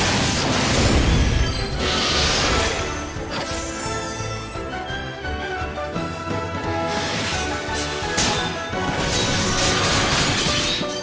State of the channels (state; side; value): identical; both; correlation 1.00